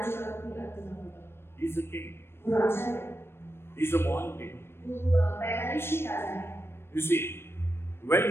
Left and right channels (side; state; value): right; late; 0.12 ms